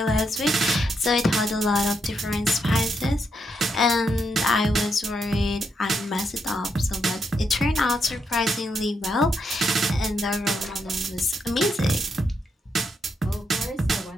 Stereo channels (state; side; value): normal; both; correlation 0.80